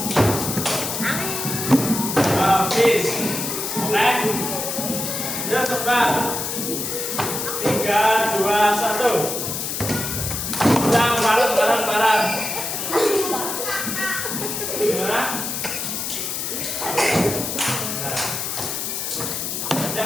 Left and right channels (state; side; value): noise; left; hiss, 3 dB below the sound